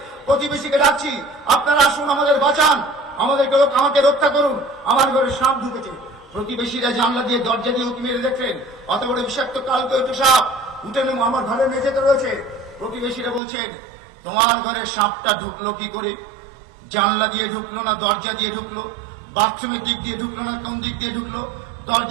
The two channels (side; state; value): left; drops out; at 13.4 s